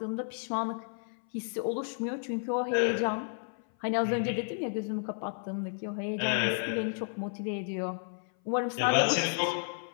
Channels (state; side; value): silent; right; 56 dB below the other